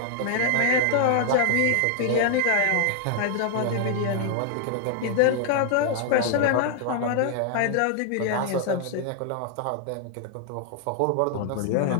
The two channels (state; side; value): different; both; correlation 0.00